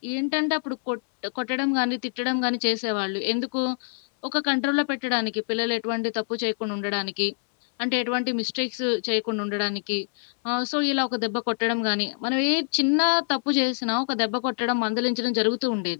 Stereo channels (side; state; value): right; silent; 61 dB below the other